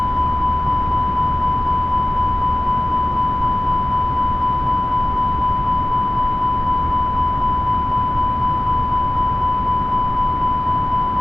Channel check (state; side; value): normal; both; correlation 0.97